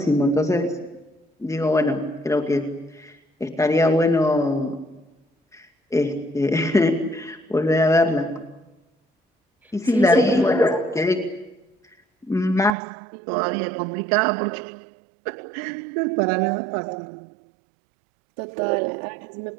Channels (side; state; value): left; drops out; at 12.8 s